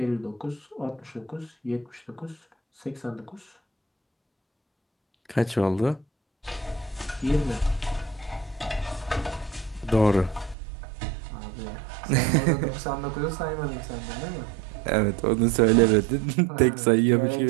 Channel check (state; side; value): drops out; left; at 10.6 s